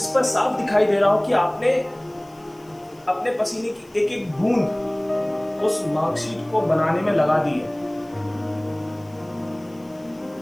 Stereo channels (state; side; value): noise; left; hiss, 30 dB below the sound